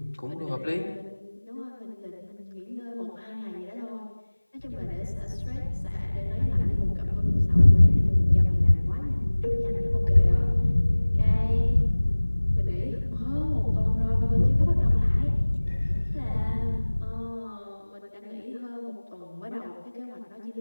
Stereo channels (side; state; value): both; inverted; correlation -1.00